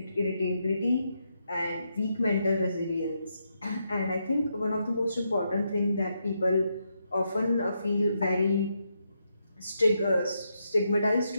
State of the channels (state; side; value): inverted; both; correlation -0.81